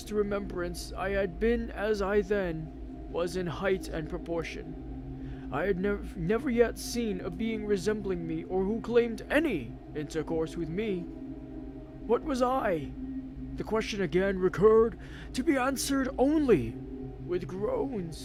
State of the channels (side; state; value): both; identical; correlation 1.00